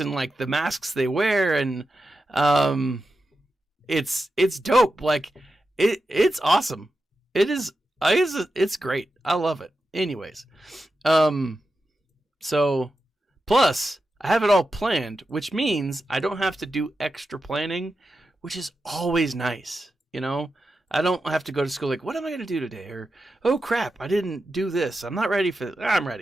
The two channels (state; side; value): normal; both; correlation 0.90